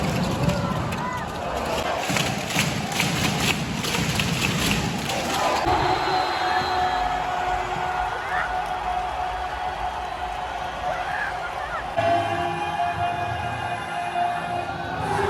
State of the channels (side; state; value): both; identical; correlation 1.00